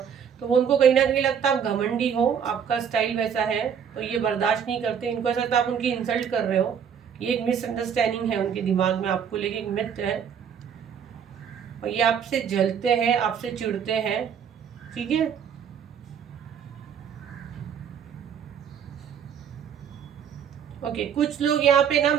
तो वो उनको कहीं ना कहीं लगता है आप घमंडी हो, आपका स्टाइल वैसा है, तो ये बर्दाश्त नहीं करते। इनको ऐसा लगता है आप उनकी इंसल्ट कर रहे हो। ये एक मिसअंडरस्टैंडिंग है उनके दिमाग में आपको लेके, एक मिथ है। और ये आपसे जलते हैं, आपसे चिढ़ते हैं। ठीक है, ओके, कुछ लोग यहाँ पे ना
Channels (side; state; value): left; quieter; 7.7 dB